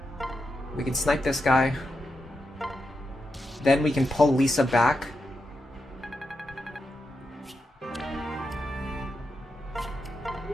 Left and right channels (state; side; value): normal; both; correlation 0.86